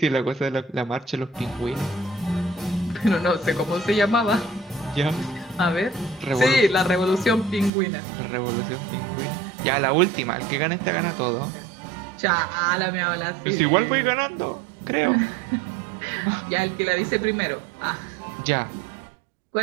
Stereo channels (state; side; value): drops out; left; at 7.7 s